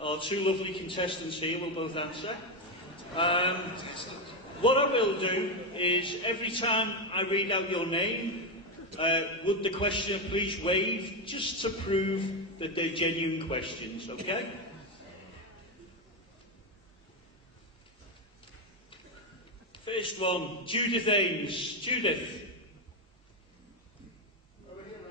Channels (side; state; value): both; normal; correlation 0.08